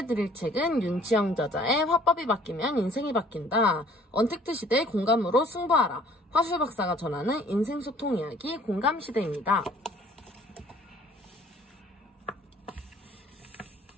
책은 윤치영 저자의 화법이 바뀌면 인생이 바뀐다. 언택트 시대의 공감으로 승부하라. 화술 박사가 전하는 인생 소통 이야기 공감 시대입니다.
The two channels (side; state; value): both; normal; correlation 0.56